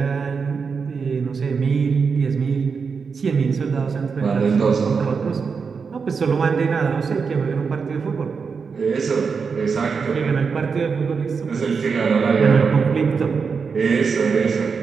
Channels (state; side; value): quieter; left; 5.5 dB